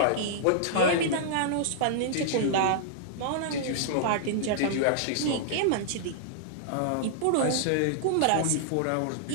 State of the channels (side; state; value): both; different; correlation -0.01